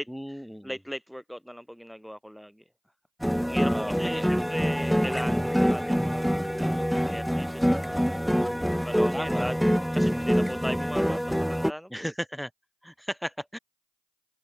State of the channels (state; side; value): identical; both; correlation 1.00